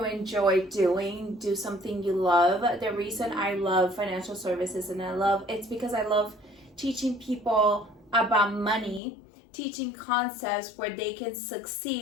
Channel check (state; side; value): drops out; right; at 9.0 s